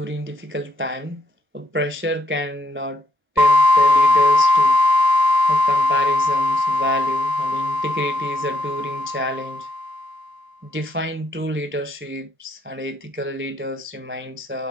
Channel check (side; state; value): left; late; 1.0 ms